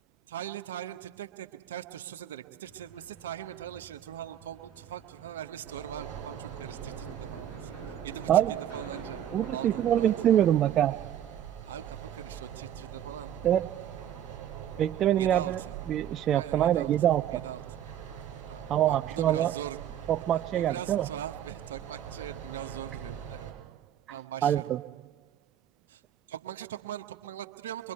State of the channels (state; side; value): quieter; left; 10.9 dB